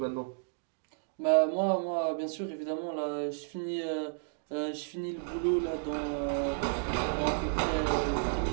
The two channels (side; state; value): left; silent; digital silence